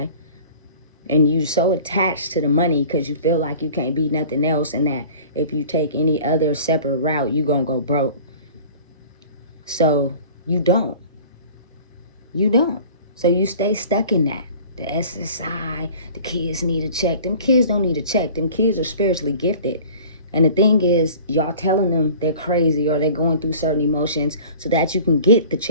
and you so attached to the money because you feel like you can't be nothing else, and that if you take any other separate route, you're gonna go broke. So you don't. So you stay stuck in that. The SSI, the kids need a check. Them kids don't need a check. Them kids are spiritually gifted. And the thing is, y'all telling them they're crazy or they're going through certain emotions so that you can get the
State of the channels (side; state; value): both; inverted; correlation -0.44